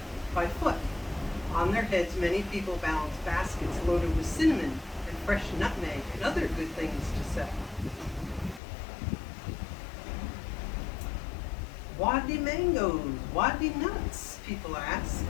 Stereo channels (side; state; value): right; drops out; at 8.6 s